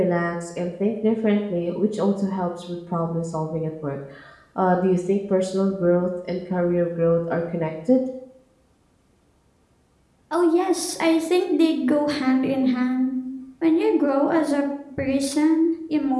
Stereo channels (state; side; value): identical; both; correlation 1.00